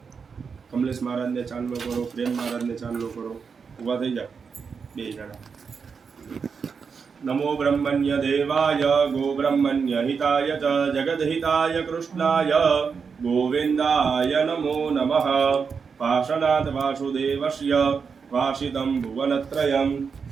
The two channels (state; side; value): quieter; left; 5.8 dB